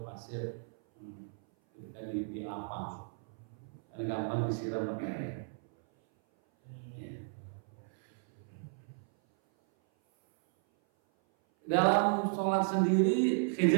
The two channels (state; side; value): silent; left; 55 dB below the other